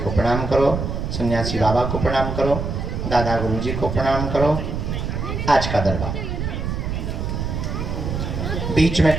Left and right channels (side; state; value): right; noise; rumble, 3 dB below the sound